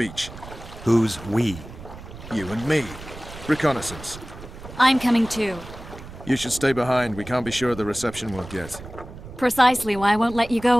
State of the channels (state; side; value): noise; right; rumble, 14 dB below the sound